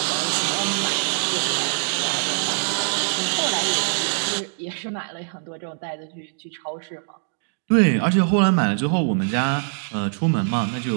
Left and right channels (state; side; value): silent; left; digital silence